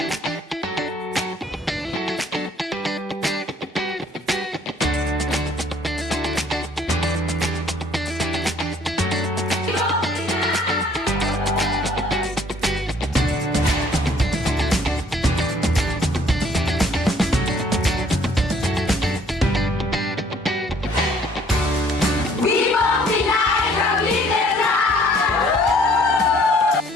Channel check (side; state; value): both; normal; correlation 0.59